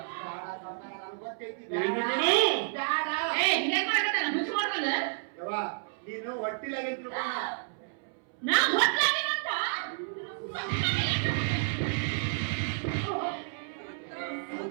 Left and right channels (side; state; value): left; silent; 57 dB below the other